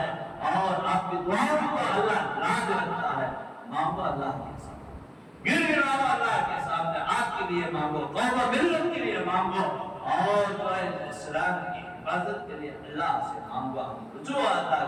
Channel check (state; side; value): identical; both; correlation 1.00